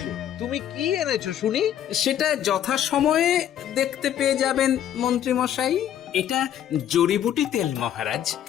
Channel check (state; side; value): quieter; right; 10.5 dB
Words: তুমি কি এনেছো শুনি? সেটা যথাসময়ে দেখতে পেয়ে যাবেন মন্ত্রী মশাই। এটা জড়িবুটি তেল মহারাজ।